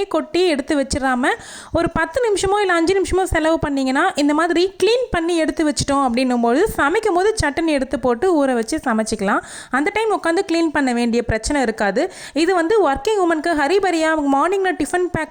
கொட்டி எடுத்து வச்சிடாம ஒரு 10 நிமிஷமோ இல்லை 5 நிமிஷமோ செலவு பண்ணிங்கன்னா இந்த மாதிரி க்ளீன் பண்ணி எடுத்து வச்சிட்டோம் அப்படின்னும்போது சமைக்கும் போது சட்டன் எடுத்து போட்டு ஊற வச்சு சமைச்சிக்கலாம். அந்த டைம் உட்காந்து க்ளீன் பண்ண வேண்டிய பிரச்சனை இருக்காது. இது ஒர்க்கிங் உமனுக்கு ஹரிபரியாக மார்னிங்கில் டிஃபன்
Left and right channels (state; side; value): identical; both; correlation 1.00